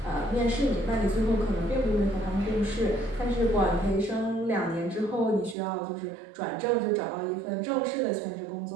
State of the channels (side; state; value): left; drops out; at 5.6 s